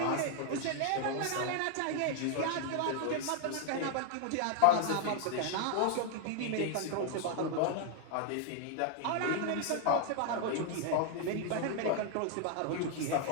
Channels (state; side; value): different; both; correlation 0.00